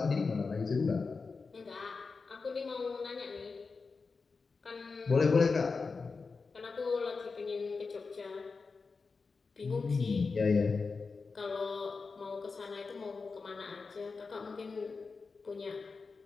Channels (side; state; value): right; quieter; 4.5 dB